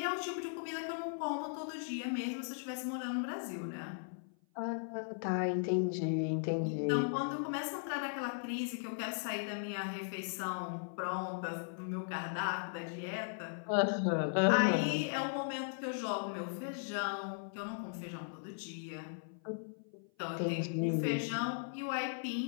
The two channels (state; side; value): silent; right; 53 dB below the other